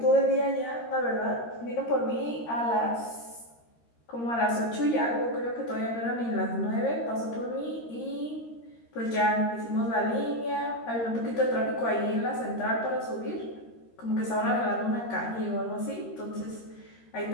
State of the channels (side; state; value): right; late; 13 ms